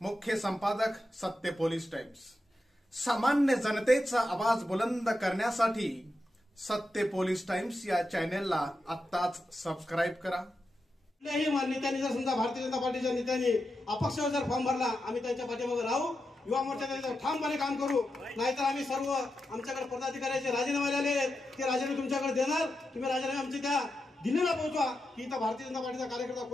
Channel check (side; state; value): both; normal; correlation 0.88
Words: मुख्य संपादक सत्य पोलीस टाइम्स। सामान्य जनतेचा आवाज बुलंद करण्यासाठी सत्य पोलीस टाइम्स या चॅनेलला आत्ताच सबस्क्राइब करा। कुठल्याही नेत्यांनी जर समजा भारतीय जनता पार्टीच्या नेत्यांनी अपक्षावर जर फॉर्म भरला, आम्ही त्यांच्या पाठीमागे राहू, युवा मोर्चाचे ठामपणे काम करू। नाहीतर आम्ही सर्व आमच्याकडे पदाधिकाऱ्याचे राजीनामे आले ते राजीनामे तुमच्याकडे देणार। तुम्ही राजीनामे आमचे त्या दिल्लीला पोहोचवा की इथं भारतीय जनता पार्टीचा कार्यकर्ता